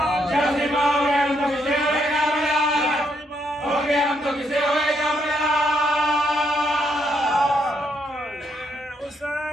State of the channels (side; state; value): both; normal; correlation 0.75